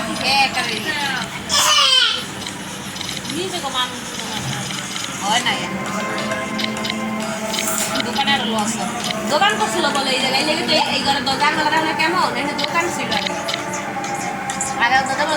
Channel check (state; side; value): identical; both; correlation 1.00